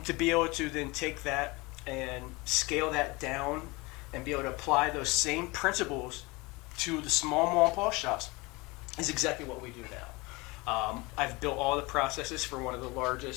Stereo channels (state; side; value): quieter; right; 24.3 dB